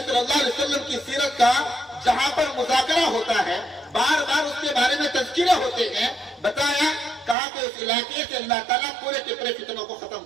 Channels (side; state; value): left; drops out; at 7.4 s